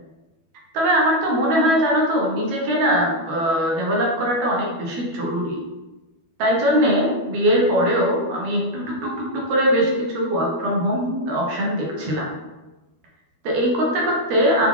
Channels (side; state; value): left; late; 12 ms